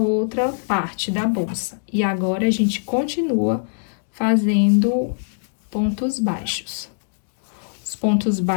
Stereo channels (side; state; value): right; silent; digital silence